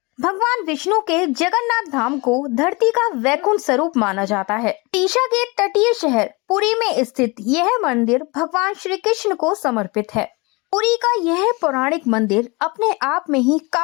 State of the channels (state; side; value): quieter; right; 26.9 dB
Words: भगवान विष्णु के जगन्नाथ धाम को धरती का वैकुंठ स्वरूप माना जाता है। ओडिशा के तटीय शहर पुरी में स्थित यह मंदिर भगवान श्री कृष्ण को समर्पित है। पुरी का यह पौराणिक मंदिर अपने आप में ही